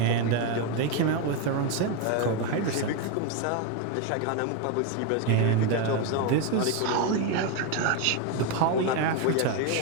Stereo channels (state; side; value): different; both; correlation 0.02